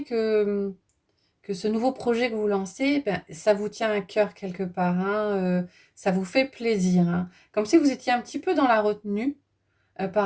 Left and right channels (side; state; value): both; identical; correlation 1.00